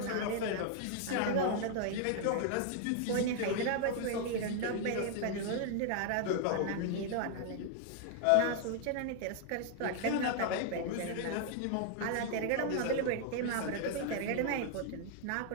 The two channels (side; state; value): both; different; correlation 0.00